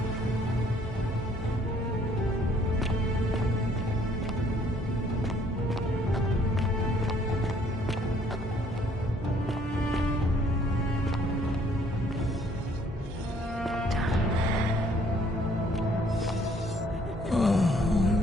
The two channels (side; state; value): both; normal; correlation 0.62